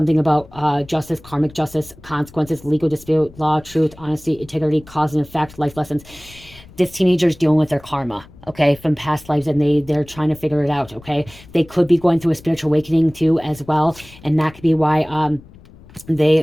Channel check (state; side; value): noise; left; rumble, 22 dB below the sound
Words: about justice, karmic justice, consequences, legal dispute, law, truth, honesty, integrity, cause and effect, life lessons. This teenager is dealing with their karma, okay, from past lives, and they're trying to figure it out. Okay, they could be going through a spiritual awakening too as well, and that could be why